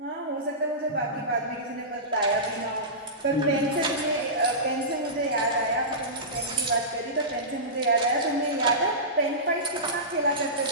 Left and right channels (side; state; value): both; normal; correlation -0.19